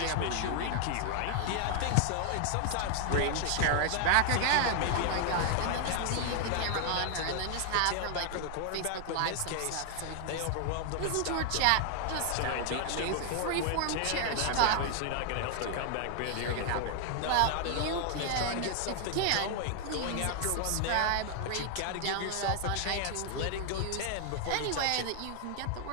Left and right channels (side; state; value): both; different; correlation 0.00